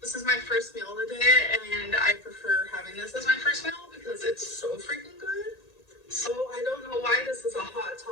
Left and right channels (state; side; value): late; right; 1.9 ms